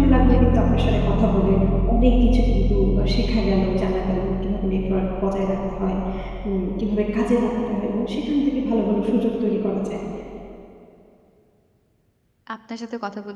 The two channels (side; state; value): both; identical; correlation 1.00